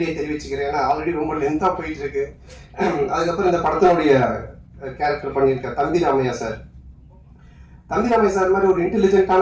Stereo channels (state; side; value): identical; both; correlation 1.00